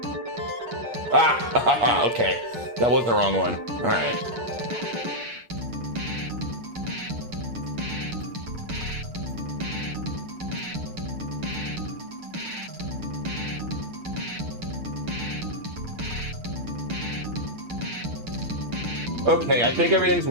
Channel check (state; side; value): late; left; 8.6 ms